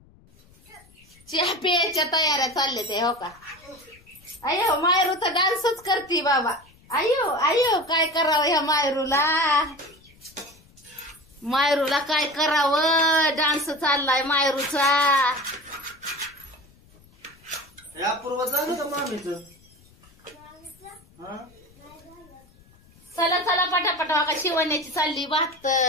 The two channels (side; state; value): left; noise; rumble, 28 dB below the sound